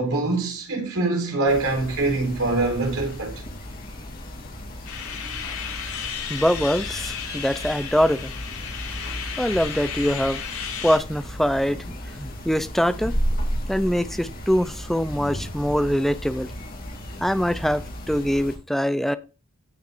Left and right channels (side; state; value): both; normal; correlation 0.77